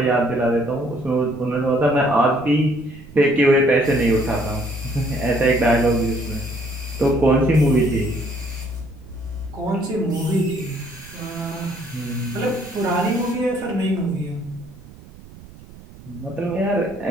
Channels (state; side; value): noise; right; rumble, 19 dB below the sound